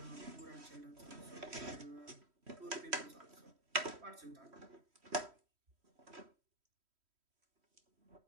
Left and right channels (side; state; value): left; late; 3.1 ms